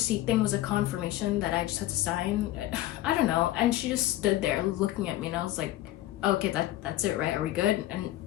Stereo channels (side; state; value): right; quieter; 15.2 dB